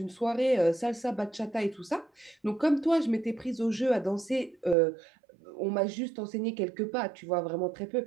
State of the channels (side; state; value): left; drops out; at 4.8 s